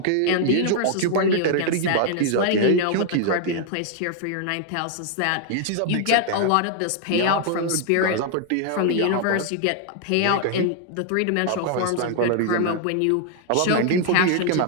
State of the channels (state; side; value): different; both; correlation 0.00